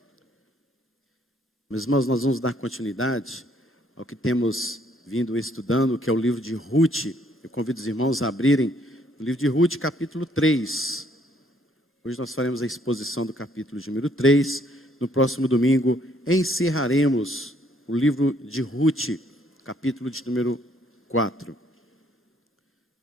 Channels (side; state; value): both; normal; correlation 0.66